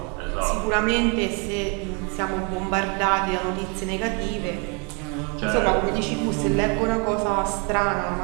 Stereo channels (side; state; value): left; quieter; 34.1 dB